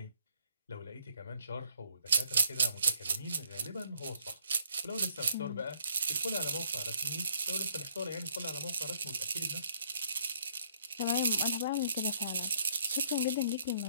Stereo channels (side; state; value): both; inverted; correlation -0.65